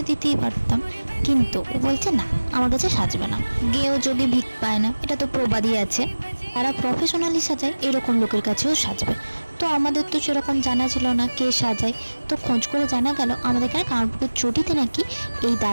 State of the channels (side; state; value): both; inverted; correlation -1.00